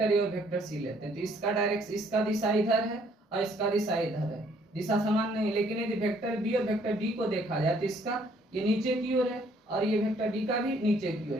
ए और वेक्टर सी लेते हैं, तो इसका डायरेक्शन, इसका दिशा इधर है और इसका दिशा इधर है, दिशा समान नहीं, लेकिन यदि वेक्टर बी और वेक्टर डी को देखा जाए तो इसका ये नीचे की ओर है और ये वेक्टर डी का भी नीचे की ओर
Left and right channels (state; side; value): normal; both; correlation 0.64